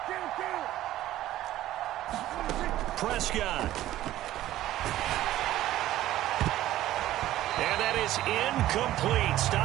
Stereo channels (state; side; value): quieter; left; 14.2 dB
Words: Prescott. And that is incomplete,